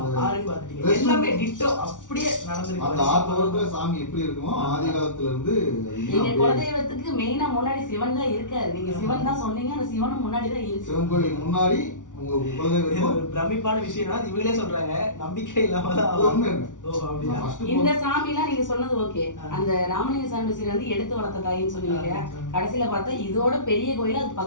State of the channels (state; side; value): late; right; 0.87 ms